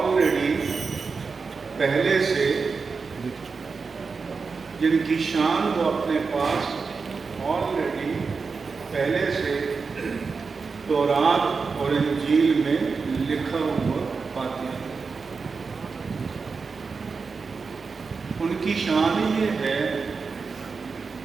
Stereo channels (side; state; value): left; quieter; 4.8 dB